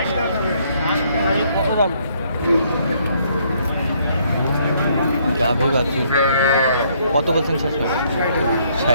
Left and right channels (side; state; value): both; inverted; correlation -0.68